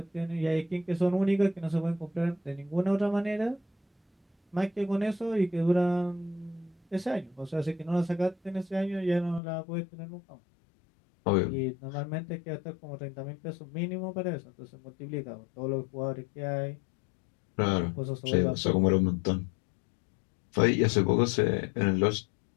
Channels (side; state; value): right; drops out; at 9.4 s